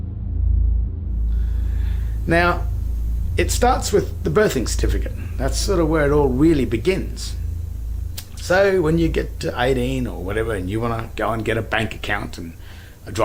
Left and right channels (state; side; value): identical; both; correlation 1.00